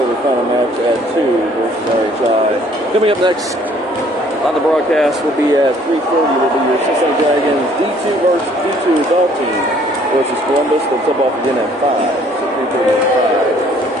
the final match at 2 versus RHI. Coming up next on the broadcast will be at 3:30. Will be your Cincinnati Dragons D2 versus D2 adult team versus Columbus. They'll tip off again at 5. So 3:30 at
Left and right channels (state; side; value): normal; both; correlation 0.60